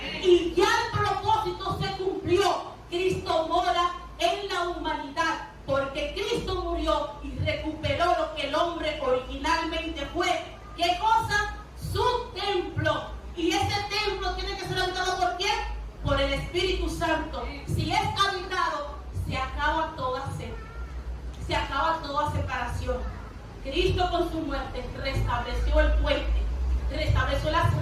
Y ya el propósito se cumplió. Cristo mora en la humanidad, porque Cristo murió y recuperó lo que el hombre originalmente fue. ¿Qué cosa? Su templo. Y ese templo tiene que ser habitado ¿por quién? Por el Espíritu Santo. Si es habitado, se acaba toda sed, se acaba toda separación. Cristo con su muerte restableció el puente, restableció las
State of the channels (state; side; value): identical; both; correlation 1.00